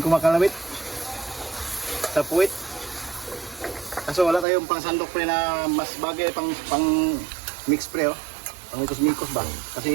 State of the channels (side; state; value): left; drops out; at 4.5 s